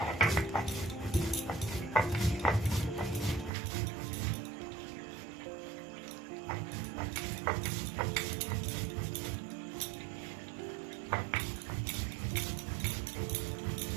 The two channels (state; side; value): drops out; left; at 3.5 s